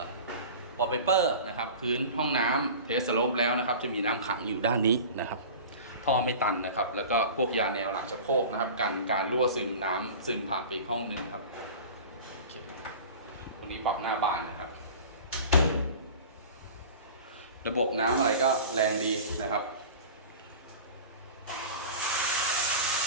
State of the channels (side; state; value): both; inverted; correlation -0.37